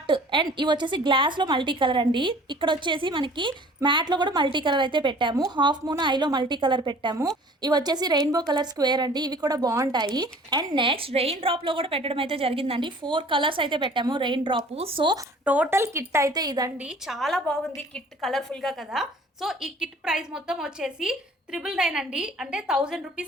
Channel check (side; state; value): both; normal; correlation 0.50